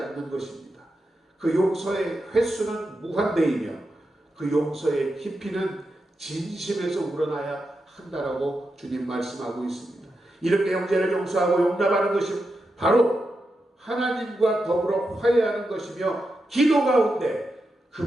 것입니다. 그 용서의 횟수는 무한대이며 그 용서의 깊이는 진심에서 우러나야 한다라고 주님 말씀하고 있습니다. 이렇게 형제를 용서하고 용납하는 것이 바로 하나님과 더불어 화해하는 것이며 기도 가운데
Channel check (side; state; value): both; normal; correlation 0.88